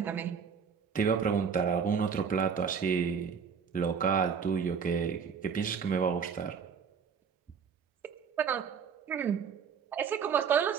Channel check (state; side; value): quieter; left; 6.6 dB